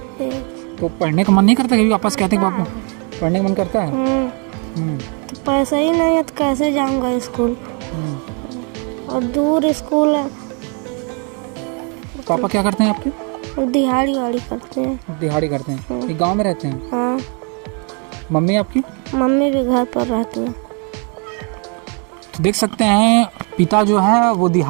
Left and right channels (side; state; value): left; quieter; 37.3 dB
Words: तो पढ़ने का मन नहीं करता? कभी वापस कहते हैं पापा पढ़ने का मन करता है? तो पैसा ही नहीं है तो कैसे जाऊंगा स्कूल, और दूर स्कूल है। पापा क्या करते हैं आपके? दिहाड़ी वाड़ी करते हैं। दिहाड़ी करते हैं? ये गांव में रहते हैं? हाँ। मम्मी आपकी? मम्मी भी घर पर रहती है। तो देख सकते हैं पिता जो है वो